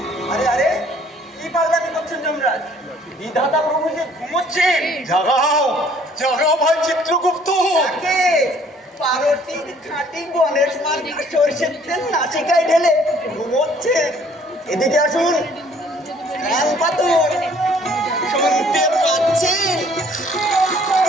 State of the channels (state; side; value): normal; both; correlation 0.59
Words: আরে আরে কি পাগলামি করছেন যমরাজ? বিধাতা প্রভু যে ঘুমোচ্ছেন। জাগাও জাগাও ভাই চিত্রগুপ্ত। তাকে পারতির খাঁটি গণেশ মার্গ সরষের তেল নাসিকায় ঢেলে ঘুমোচ্ছেন। এদিকে আসুন। ফ্যান পাতুন, শুনতে পাচ্ছেন?